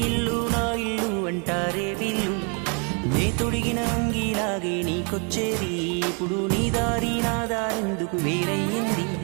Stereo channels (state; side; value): quieter; left; 37.5 dB